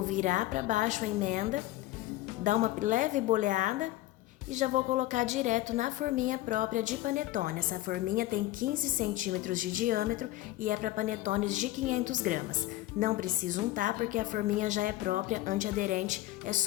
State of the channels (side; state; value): right; quieter; 16.2 dB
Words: virar para baixo a emenda, dar uma leve boleada e já vou colocar direto na forminha própria de panetone. Essa forminha tem 15 centímetros de diâmetro e é para panetones de 500 gramas. Não preciso untar porque a forminha já é própria, antiaderente, é